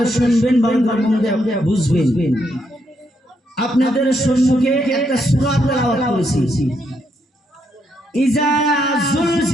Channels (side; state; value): both; normal; correlation 0.77